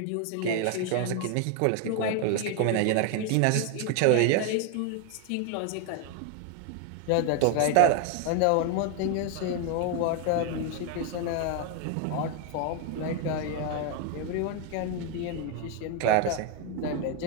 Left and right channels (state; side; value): different; both; correlation 0.01